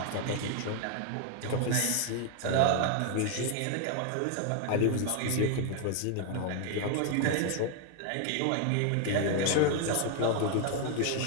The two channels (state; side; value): different; both; correlation 0.01